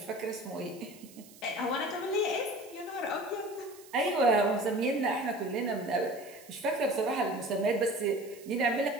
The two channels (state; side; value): noise; right; hiss, 21 dB below the sound